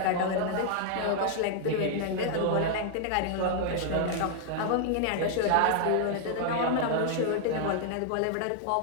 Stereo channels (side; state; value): both; different; correlation 0.00